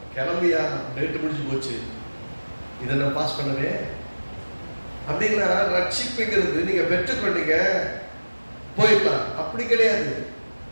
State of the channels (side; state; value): both; inverted; correlation -1.00